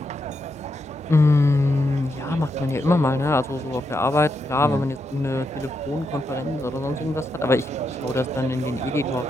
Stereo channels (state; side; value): normal; both; correlation 0.83